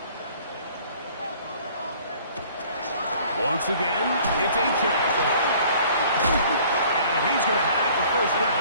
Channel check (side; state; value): both; inverted; correlation -0.53